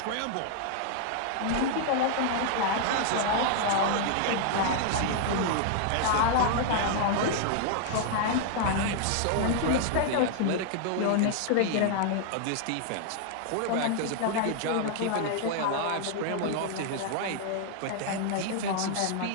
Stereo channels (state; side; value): different; both; correlation 0.00